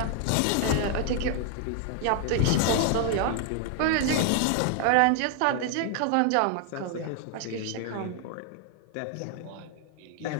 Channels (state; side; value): different; both; correlation 0.00